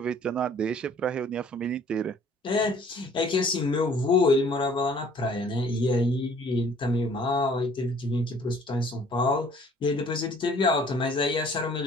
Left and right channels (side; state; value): both; normal; correlation 0.55